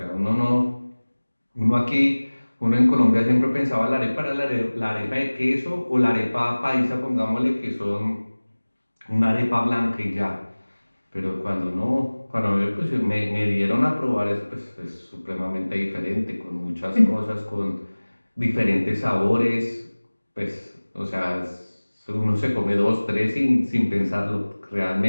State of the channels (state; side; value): inverted; both; correlation -1.00